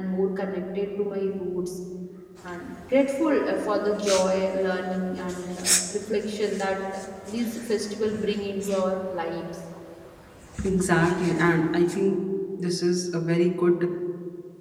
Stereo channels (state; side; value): identical; both; correlation 1.00